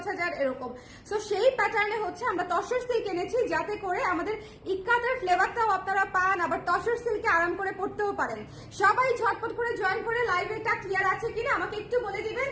এরকম। সো সেই প্যাটার্নে হচ্ছে আমরা তসর সিল্ক এনেছি, যাতে করে আমাদের ইক্কাতের ফ্লেভারটাও আপনারা পান, আবার তসর সিল্কে আরাম করে পড়তেও পারেন। সবাই ঝটপট করে জয়েন করে লাইভটা ক্লিয়ার আছে কিনা আমাকে একটু বলে দিবেন,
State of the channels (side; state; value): both; identical; correlation 1.00